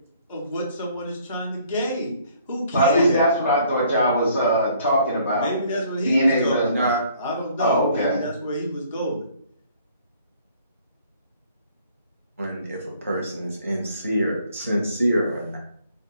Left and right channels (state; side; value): inverted; both; correlation -0.60